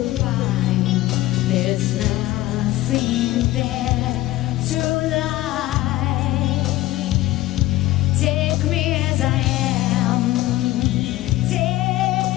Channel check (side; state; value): right; quieter; 16.6 dB